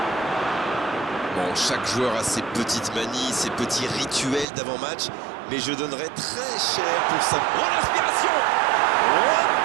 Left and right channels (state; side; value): drops out; left; at 4.5 s